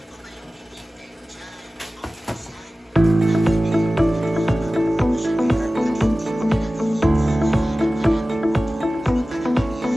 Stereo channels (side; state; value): both; normal; correlation 0.96